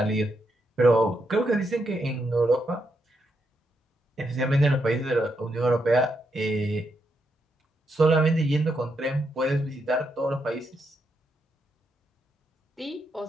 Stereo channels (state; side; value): normal; both; correlation 0.81